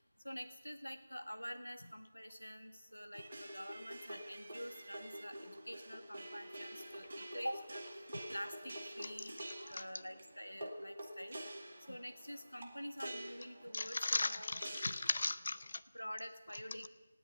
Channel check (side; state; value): both; inverted; correlation -0.96